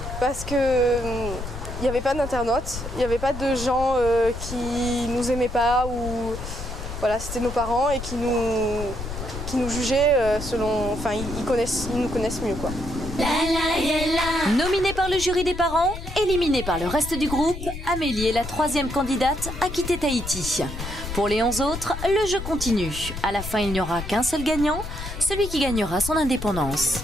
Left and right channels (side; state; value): left; noise; rumble, 8 dB below the sound